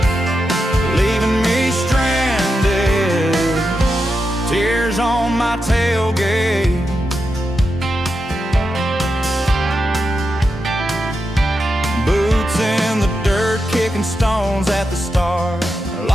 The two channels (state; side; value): normal; both; correlation 0.87